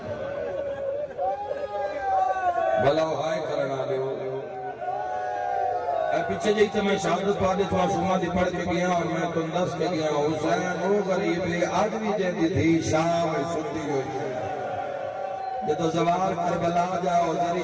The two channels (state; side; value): identical; both; correlation 1.00